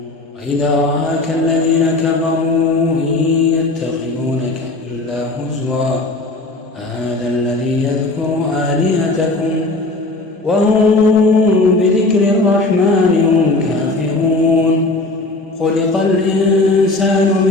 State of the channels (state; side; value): quieter; right; 3.0 dB